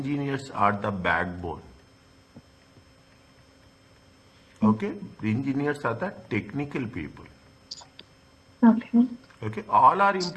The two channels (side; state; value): both; identical; correlation 1.00